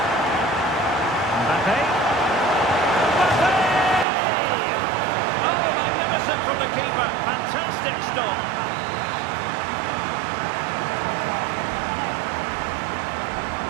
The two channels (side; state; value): left; drops out; at 4.0 s